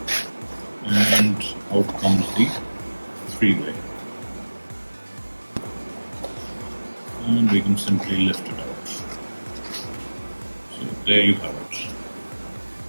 And out comes the three-way. And we can simply lift it out. So there you have it.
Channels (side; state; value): both; inverted; correlation -1.00